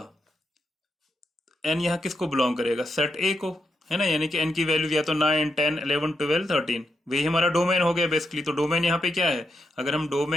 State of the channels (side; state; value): both; normal; correlation 0.83